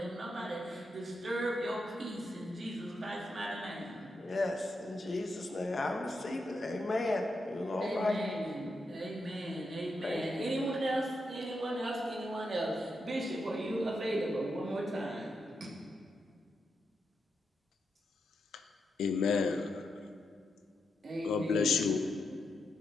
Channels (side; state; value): both; normal; correlation 0.85